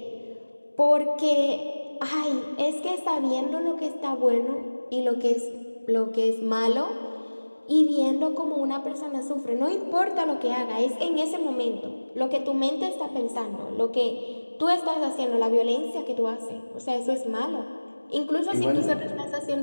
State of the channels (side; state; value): both; inverted; correlation -1.00